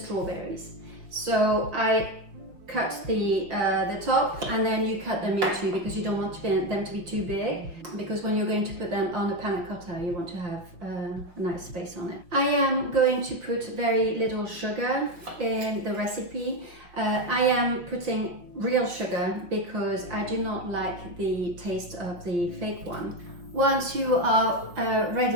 So I cut the top and then you cut them in two because you don't want them to be too big, because when you're going to put them on the panna cotta you want to have a nice space on it. I am going to put very little sugar in the recipe. I am putting real sugar because I do not like the taste of the fake one. Once you are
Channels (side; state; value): left; late; 5.4 ms